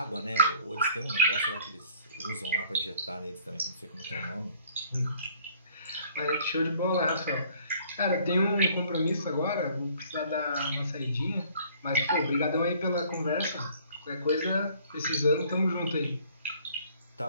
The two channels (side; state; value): both; inverted; correlation -0.57